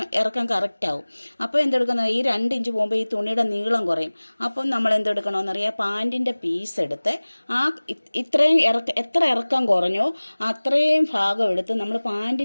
ഇറക്കം കറക്റ്റ് ആവും. അപ്പോൾ എന്തെടുക്കുന്ന, ഈ 2 ഇഞ്ച് പോകുമ്പോൾ ഈ തുണിയുടെ നീളം കുറയും. അപ്പം നമ്മൾ എന്തെടുക്കണമെന്നറിയാം, പാൻറ്റിൻ്റെ പീസ് എടുത്ത് ആ ഇത്രയും എത്ര ഇറക്കം കുറഞ്ഞോ അത്രയും ഭാഗം എടുത്ത് നമ്മൾ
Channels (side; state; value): both; inverted; correlation -1.00